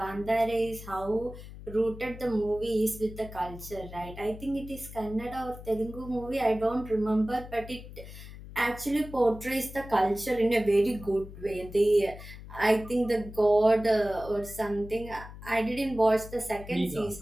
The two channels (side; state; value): left; noise; hum, 14 dB below the sound